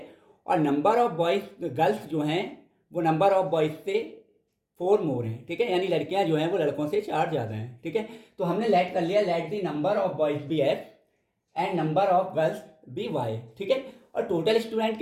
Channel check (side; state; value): both; identical; correlation 1.00